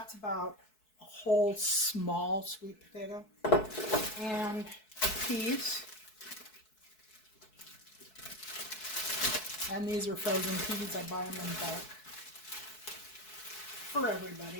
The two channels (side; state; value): right; late; 4.6 ms